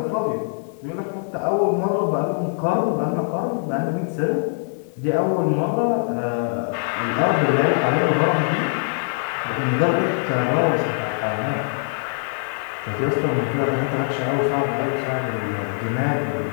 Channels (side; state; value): right; silent; digital silence